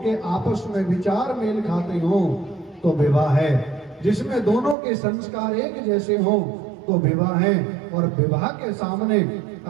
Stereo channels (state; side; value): drops out; left; at 4.8 s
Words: के आपस में विचार मेल खाते हो तो विवाह है। जिसमें दोनों के संस्कार एक जैसे हो तो विवाह है। और विवाह के सामने